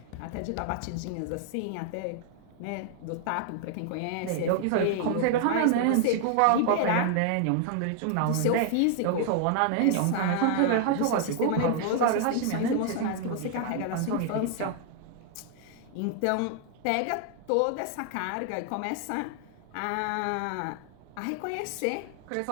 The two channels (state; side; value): different; both; correlation 0.00